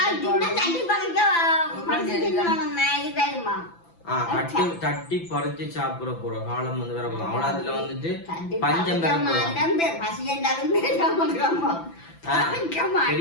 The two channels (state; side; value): late; right; 5.9 ms